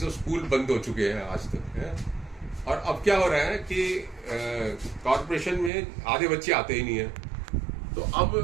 स्कूल बंद हो चुके हैं आज तक है। और अब क्या हो रहा है कि कॉर्पोरेशन में आधे बच्चे आते ही नहीं है। तो अब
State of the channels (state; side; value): drops out; left; at 5.7 s